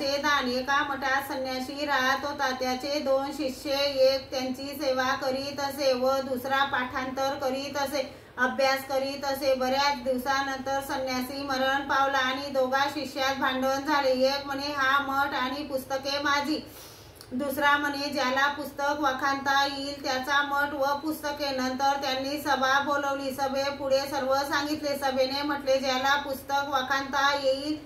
दान। एका मठात संन्यासी राहत होता। त्याचे 2 शिष्य, एक त्यांची सेवा करीत असे व दुसरा पाठांतर करीत असे, अभ्यास करीत असे। बऱ्याच दिवसानंतर संन्यासी मरण पावला आणि दोघा शिष्यात भांडण झाले। एक म्हणे हा मठ आणि पुस्तके माझी, दुसरा म्हणे ज्याला पुस्तक वाखाणता येईल त्याचा मठ व पुस्तके। नंतर त्यांनी सभा बोलवली। सभेपुढे सर्व सांगितले। सभेने म्हटले ज्याला पुस्तक वाखाणता येईल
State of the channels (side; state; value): both; identical; correlation 1.00